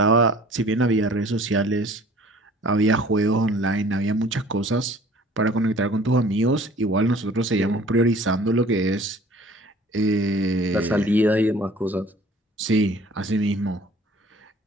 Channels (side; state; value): both; normal; correlation 0.50